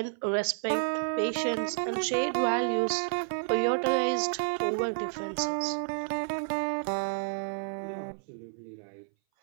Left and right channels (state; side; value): silent; left; 58 dB below the other